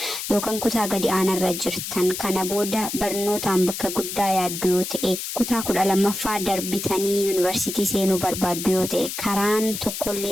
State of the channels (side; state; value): left; noise; hiss, 6 dB below the sound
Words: yookaan kutaa gadi aanarra jirtan kana booda barnootaan bakka guddaa yaaddu yoo ta'e kutaa 12ffaa bitanii yuunivarsiitii seenuu barbaaddu yoo ta'e karaan